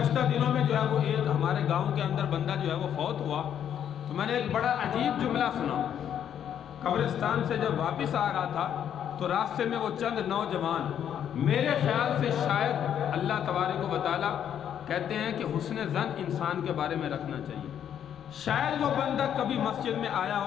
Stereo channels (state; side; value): quieter; right; 9.4 dB